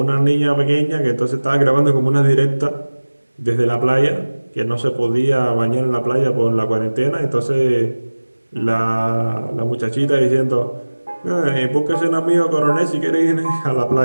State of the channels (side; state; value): both; inverted; correlation -1.00